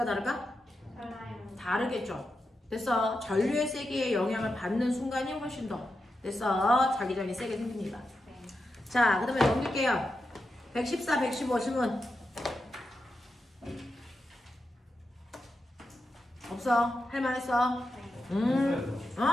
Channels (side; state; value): both; normal; correlation 0.88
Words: 다를까? 달라요. 다르겠죠. 됐어. 전류의 세기에 영향을 받는 순간이 훨씬 더 됐어. 자기장이 세게 생깁니다. 네. 자, 그 다음에 넘길게요. 114, 115 질문. 없어? 할만했어? 했어요.